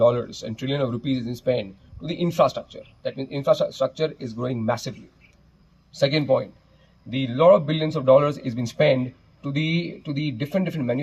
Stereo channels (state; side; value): identical; both; correlation 1.00